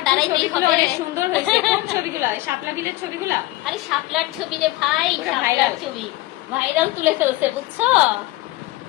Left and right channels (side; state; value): right; quieter; 18.2 dB